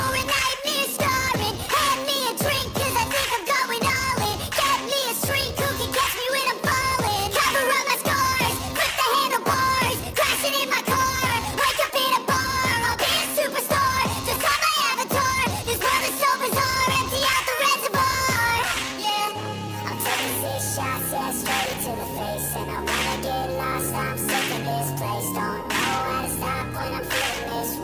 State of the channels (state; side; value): identical; both; correlation 1.00